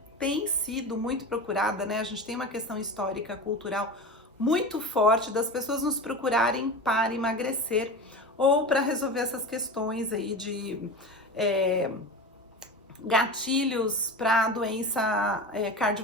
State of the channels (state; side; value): normal; both; correlation 0.28